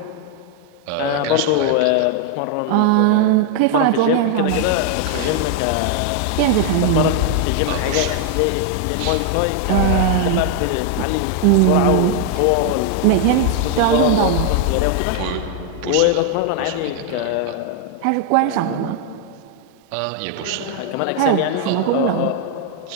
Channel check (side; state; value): both; different; correlation 0.00